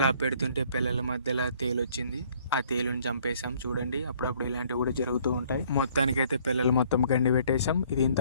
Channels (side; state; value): both; inverted; correlation -0.61